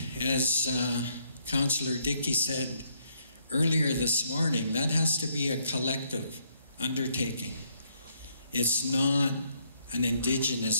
as Councillor Dickey said earlier this morning, that has to be a collective undertaking. It's not an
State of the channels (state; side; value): inverted; both; correlation -0.71